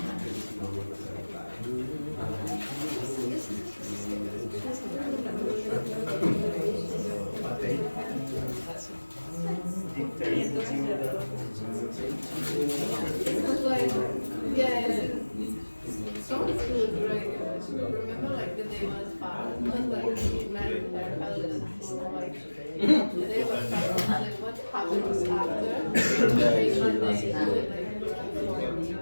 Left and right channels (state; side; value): inverted; both; correlation -1.00